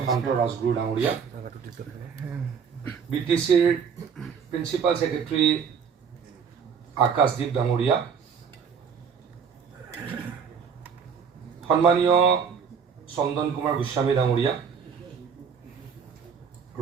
ৰাজগুৰু ডাঙৰীয়া, BTCৰ প্ৰিন্সিপাল ছেক্ৰেটাৰী আকাশদ্বীপ ডাঙৰীয়া, সন্মানীয় চন্দন কুমাৰ গোস্বামী ডাঙৰীয়া,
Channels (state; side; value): quieter; left; 6.7 dB